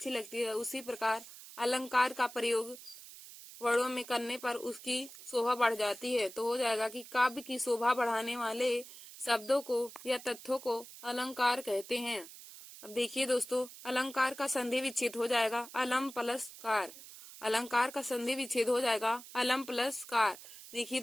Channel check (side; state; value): right; noise; hiss, 16 dB below the sound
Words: लगती है, उसी प्रकार अलंकार का प्रयोग वर्णों में करने पर उसकी शोभा बढ़ जाती है। तो हो जाएगा कि काव्य की शोभा बढ़ाने वाले शब्दों को या तथ्यों को अलंकार कहते हैं। अब देखिए दोस्तों, अलंकार का संधि विच्छेद हो जाएगा अलम प्लस कार। अलंकार का संधि विच्छेद हो जाएगा अलम प्लस कार। देखिए